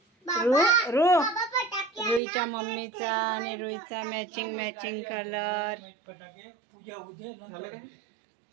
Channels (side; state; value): left; drops out; at 2.2 s